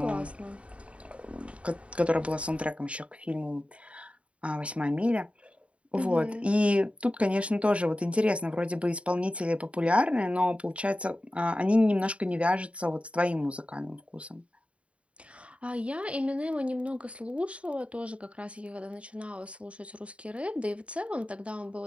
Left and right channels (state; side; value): late; left; 0.062 ms